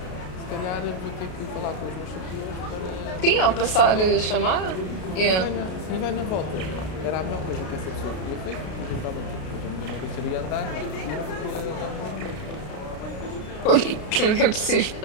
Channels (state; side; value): late; right; 33 ms